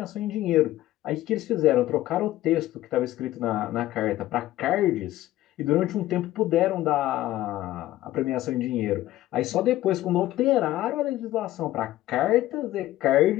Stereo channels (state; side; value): quieter; right; 15.2 dB